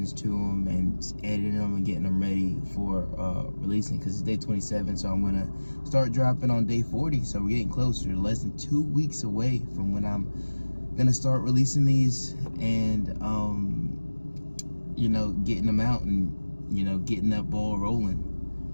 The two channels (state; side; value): inverted; both; correlation -1.00